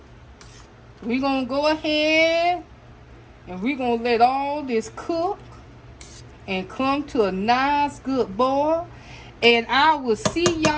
we're gonna go ahead and we're gonna let all this cook and come to a nice good boil. And I will see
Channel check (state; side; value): identical; both; correlation 1.00